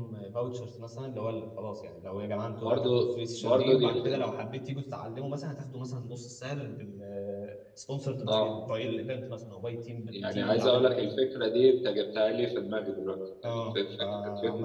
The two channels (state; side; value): identical; both; correlation 1.00